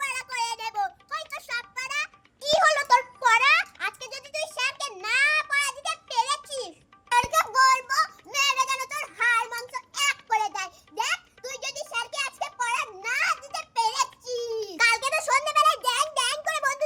করে দেব। কই তো সব পড়া? কি হলো তোর পড়া? আজকে যদি তুই স্যারকে না পড়া দিতে পেরেছিস, স্যারকে বলবো মেরে যেন তোর হাড় মাংস এক করে দেয়। দেখ তুই যদি স্যারকে আজকে পড়া না দিতে পেরেছিস, কালকে তো সন্ধ্যাবেলায় ড্যাং ড্যাং করে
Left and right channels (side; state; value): both; identical; correlation 1.00